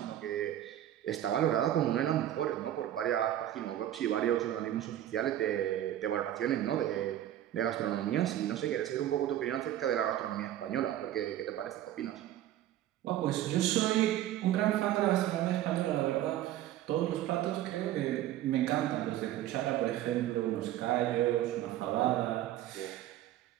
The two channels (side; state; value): left; quieter; 12.6 dB